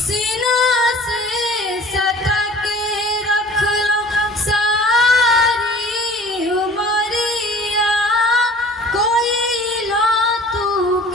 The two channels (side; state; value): both; normal; correlation 0.47